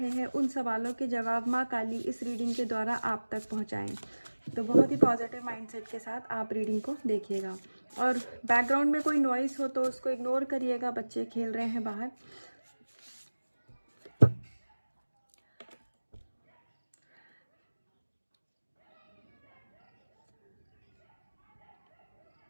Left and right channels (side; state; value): both; inverted; correlation -1.00